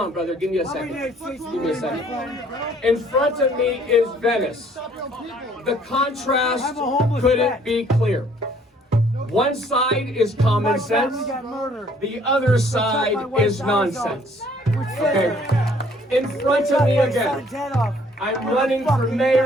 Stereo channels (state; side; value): normal; both; correlation 0.60